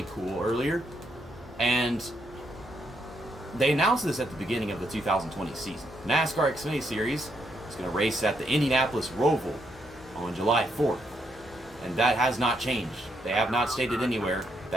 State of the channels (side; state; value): both; normal; correlation 0.77